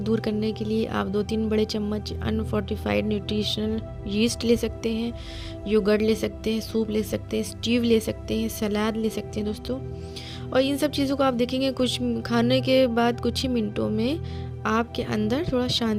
करने के लिए आप 2-3 बड़े चम्मच अनफोर्टिफाइड न्यूट्रिशनल यीस्ट ले सकते हैं, योगर्ट ले सकते हैं, सूप ले सकते हैं, स्टीव ले सकते हैं, सलाद ले सकते हैं दोस्तों। और इन सब चीज़ों को आप देखेंगे कुछ खाने के बाद कुछ ही मिनटों में आपके अंदर थोड़ा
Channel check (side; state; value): both; identical; correlation 1.00